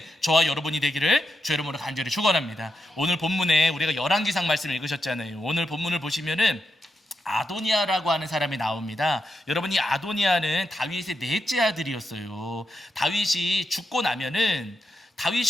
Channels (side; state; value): both; normal; correlation 0.85